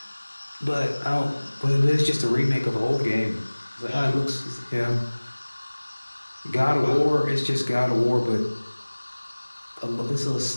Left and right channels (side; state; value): both; inverted; correlation -1.00